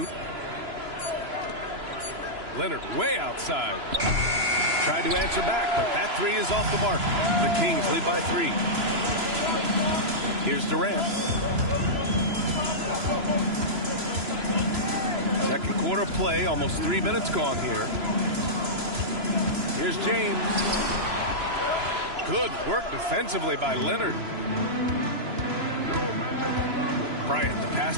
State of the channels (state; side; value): late; left; 3.0 ms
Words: Leonard way outside. Tried to answer back, but that 3 is off the mark. The Kings lead by 3. Here's Durant. Second quarter play, almost 3 minutes gone here. Here's James. Good work defensively by Leonard. Bryant, the pass